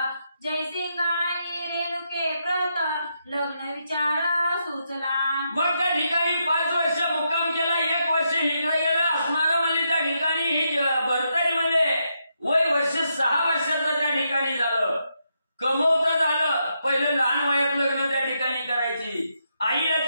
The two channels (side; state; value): both; inverted; correlation -0.81